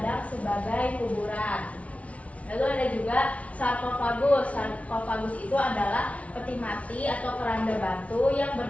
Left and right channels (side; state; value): right; late; 0.065 ms